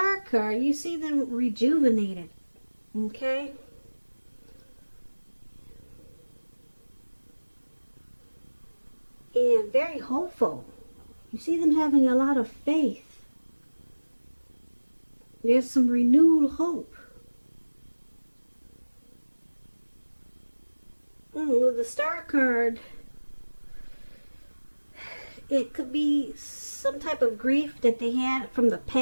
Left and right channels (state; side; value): inverted; both; correlation -1.00